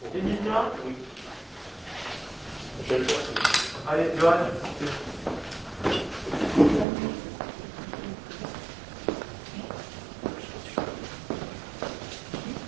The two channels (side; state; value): left; drops out; at 6.9 s